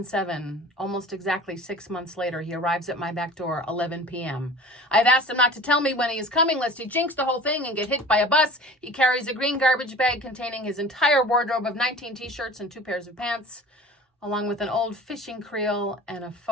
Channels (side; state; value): both; normal; correlation 0.41